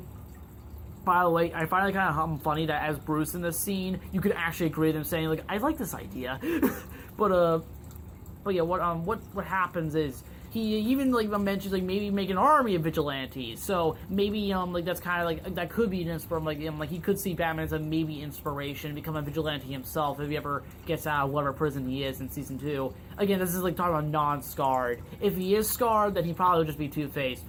the way, I find it kind of funny that as Bruce in this scene, you could actually agree with him saying I like this idea, but yeah, what happens is. He even mentions maybe make an army of vigilantes. So maybe that's kind of that could be an inspiration. He could see Batman as a maybe inspiration, become a vigilante himself if he ever gets out of whatever prison he is in season 2. Again, this is talking about non-scarred. If he is scarred, then he probably would just be Two-Face,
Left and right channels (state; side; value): identical; both; correlation 1.00